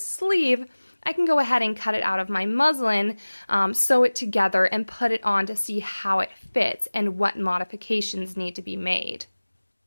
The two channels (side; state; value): both; inverted; correlation -1.00